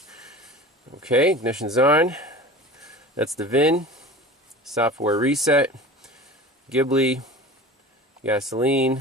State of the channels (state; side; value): normal; both; correlation 0.37